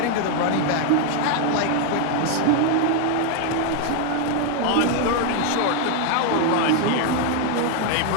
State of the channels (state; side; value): different; both; correlation 0.00